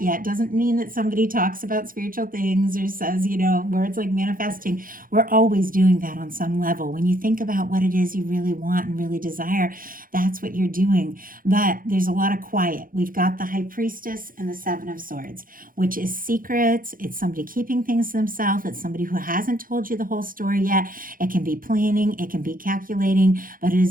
yet. Doesn't mean that somebody talks about spiritual things or says, words like manifesting. We're always doing that on some level. When you think about what it is you really want and really desire, that's what you're doing. But there's a lot of quiet. We've got the High Priestess and the Seven of Swords, which is secrets. It's somebody keeping things to themselves. It's somebody who hasn't told you the whole story yet. It can be planning, it can be calculating, but it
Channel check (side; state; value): left; late; 0.41 ms